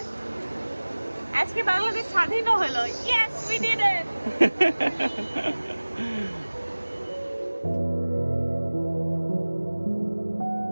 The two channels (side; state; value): both; inverted; correlation -1.00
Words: আজকে বাংলাদেশ স্বাধীন হলো। Yes, we did it.